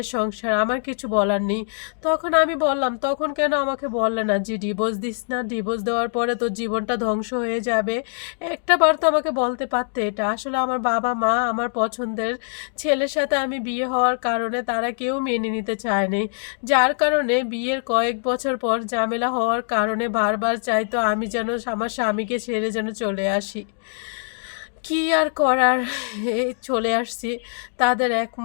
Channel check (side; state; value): right; silent; digital silence